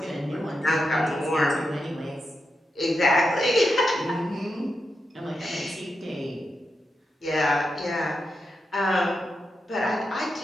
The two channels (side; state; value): both; normal; correlation 0.87